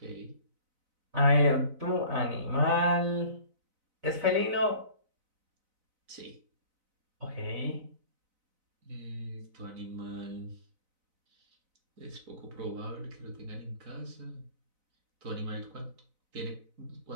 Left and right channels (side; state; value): left; late; 4.0 ms